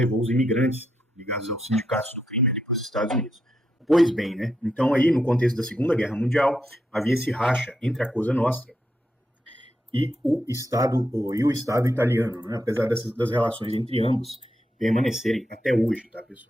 os imigrantes ligados aos sindicatos do crime ali para os Estados Unidos. Pois bem, né? Então aí, no contexto da Segunda Guerra Mundial, havia esse racha entre a Cosa Nostra e o Estado italiano, né? Apesar das relações entre ambos permanecerem até hoje, tá,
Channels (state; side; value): normal; both; correlation 0.82